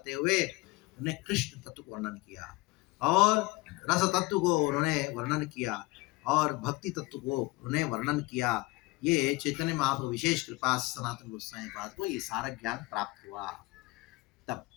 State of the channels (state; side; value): quieter; right; 22.5 dB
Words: हुए उन्होंने कृष्ण तत्व को वर्णन किया, और रस तत्व को उन्होंने वर्णन किया, और भक्ति तत्व को उन्होंने वर्णन किया। ये चैतन्य महाप्रभु विशेष कृपा से सनातन गोस्वामी पाद को ये सारा ज्ञान प्राप्त हुआ। तब